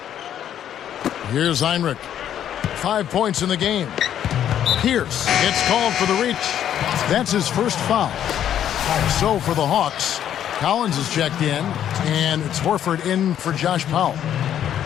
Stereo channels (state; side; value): quieter; right; 10.3 dB